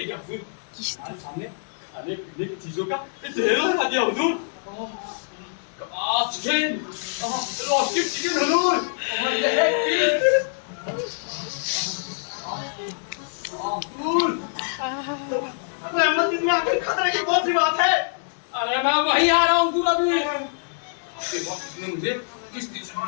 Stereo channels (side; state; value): right; silent; 62 dB below the other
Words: गया हुजूर। हमारे सामने खाने पीने की चीजों का ढेर लगा दिया हुजूर। कबाब चिकन, रोस्टेड चिकन हुजूर, और लेग पीस। हुजूर, रहमत इसमें आखिर खतरे की कौन सी बात है? अरे मैं वही आ रहा हूँ हुजूर अभी। आपके वक्त इसने मुझे किश्ती